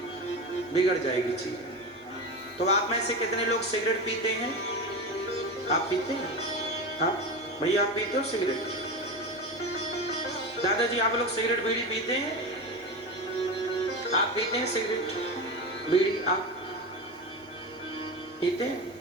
बिगड़ जाएगी चीज। तो आप में से कितने लोग सिगरेट पीते हैं? आप पीते हैं? हाँ भैया, आप पीते हो सिगरेट? दादाजी, आप लोग सिगरेट बीड़ी पीते हैं? आप पीते हैं सिगरेट बीड़ी? आप पीते हैं?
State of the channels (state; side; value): normal; both; correlation 0.22